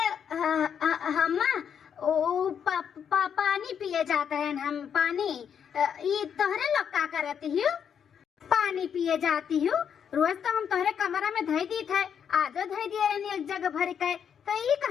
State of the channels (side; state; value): right; quieter; 7.9 dB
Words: अम्मा ओ पानी पिए जाते हैं हम, पानी। ये तोहरे लोग का करती हो? पानी पिए जाती हूँ, रोज तो हम तोहरे कमरा में धई दी थे, आजो धई दिए रहनी एक जगह भर के। तो ये